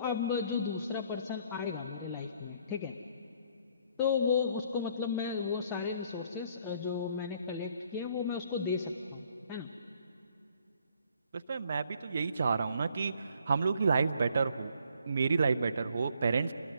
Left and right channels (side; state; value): both; inverted; correlation -0.65